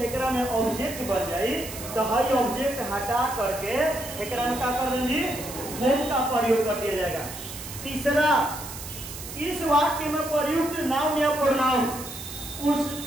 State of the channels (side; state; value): right; noise; hiss, 11 dB below the sound